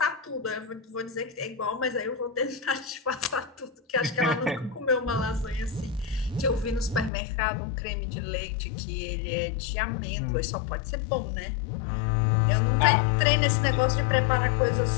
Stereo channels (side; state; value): right; drops out; at 7.1 s